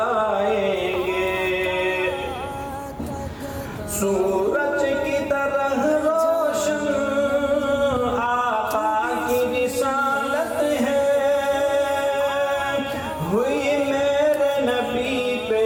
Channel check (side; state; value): both; identical; correlation 1.00